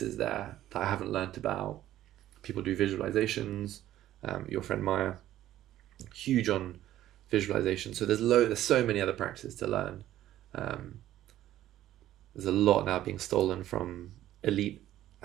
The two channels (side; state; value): left; quieter; 13.2 dB